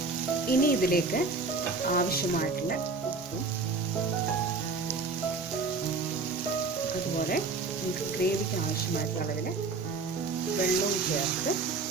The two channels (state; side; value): quieter; left; 4.0 dB